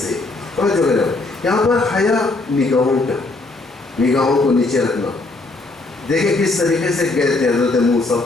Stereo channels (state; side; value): quieter; right; 3.3 dB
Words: جو ہے یہاں پر حیا، نگاہوں کا، نگاہوں کو نیچے رکھنا. دیکھیں کس طریقے سے گئے تھے حضرت موسیٰ،